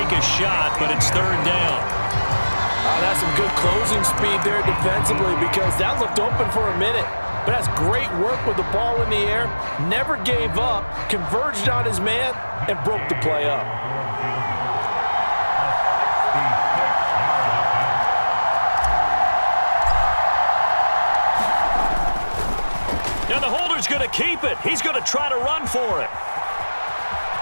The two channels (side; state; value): both; inverted; correlation -1.00